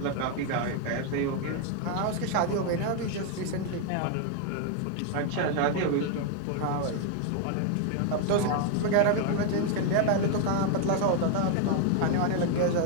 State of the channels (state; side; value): different; both; correlation 0.01